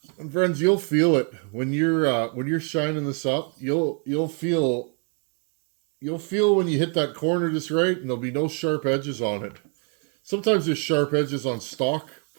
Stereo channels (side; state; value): left; quieter; 38.0 dB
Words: And friends, you'll feel it when you're shining this up. You'll feel when you hit that corner just right, and there'll be no sharp edges on it. Sometimes there's sharp edges on stock